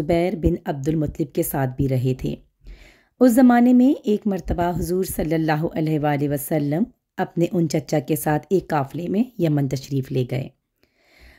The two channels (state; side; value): identical; both; correlation 1.00